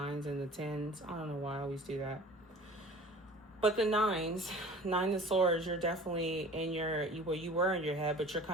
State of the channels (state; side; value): normal; both; correlation 0.44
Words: and the 10s. I don't know why I always do that. But the 9s, 9 of Swords, you're definitely in where you were in your head, but you're